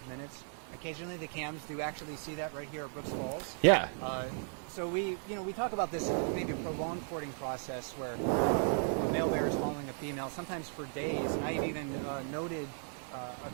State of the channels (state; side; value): silent; left; 54 dB below the other